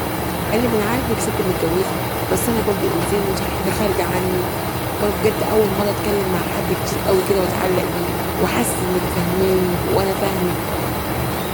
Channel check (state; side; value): identical; both; correlation 1.00